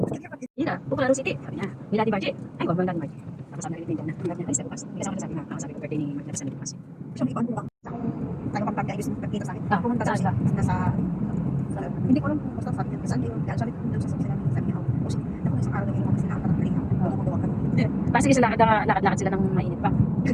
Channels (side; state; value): both; identical; correlation 1.00